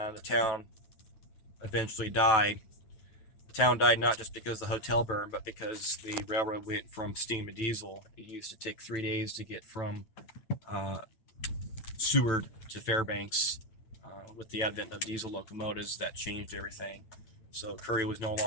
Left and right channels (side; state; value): right; late; 9.0 ms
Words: the town eventually died. The town died not just because the hotel burned, but because the railroad went from steam to diesel. It used to take 3 days to get from Seward to Fairbanks. With the advent of diesel locomotives, that changed everything. So Curry was no